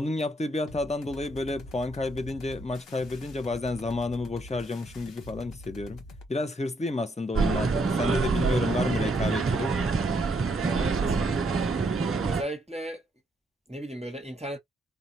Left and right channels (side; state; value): both; normal; correlation 0.74